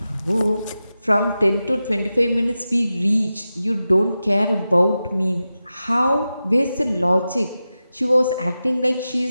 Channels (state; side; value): inverted; both; correlation -0.92